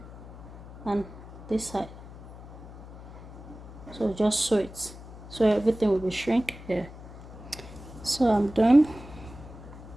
and this side. So just sew it, so everything will be shrink here. So I'm done.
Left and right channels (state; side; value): noise; left; hum, 15 dB below the sound